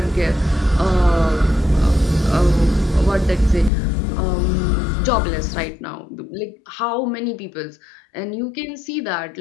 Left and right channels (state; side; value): drops out; right; at 3.7 s